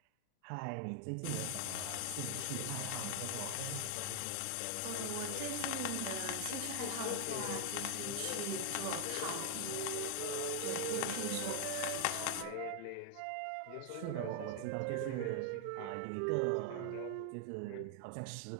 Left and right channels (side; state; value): both; different; correlation 0.00